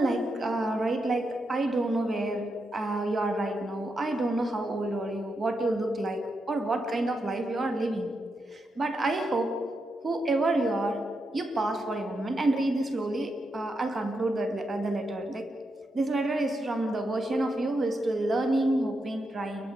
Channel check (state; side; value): normal; both; correlation 0.84